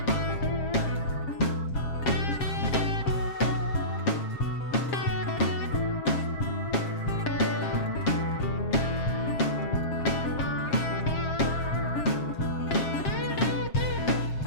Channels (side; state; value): right; late; 7.5 ms